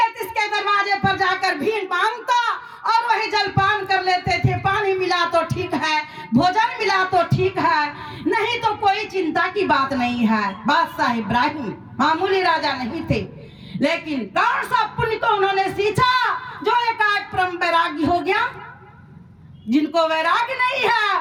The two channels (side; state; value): both; identical; correlation 1.00